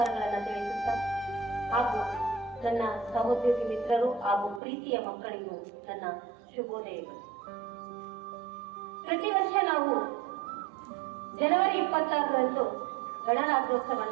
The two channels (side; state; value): left; drops out; at 4.6 s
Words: ತಿಳಿಸುತ್ತಾ ಹಾಗೂ ನನ್ನ ಸಹೋದ್ಯೋಗಿ ಮಿತ್ರರು ಹಾಗೂ ಪ್ರೀತಿಯ ಮಕ್ಕಳಿಗೂ ನನ್ನ ಶುಭೋದಯಗಳು. ಪ್ರತಿ ವರ್ಷ ನಾವು ಜನವರಿ 26ರಂದು